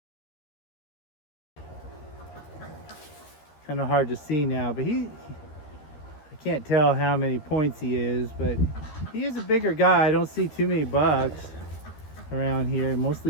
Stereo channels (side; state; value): right; late; 13 ms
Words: Kind of hard to see now, but I can't tell how many points he is, but he is a bigger guy. I don't see too many bucks around here,